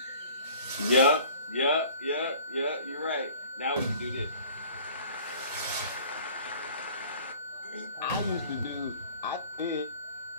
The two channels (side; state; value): both; inverted; correlation -0.48